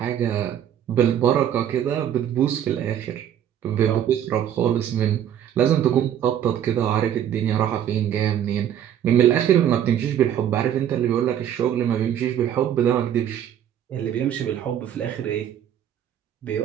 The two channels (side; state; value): left; quieter; 10.1 dB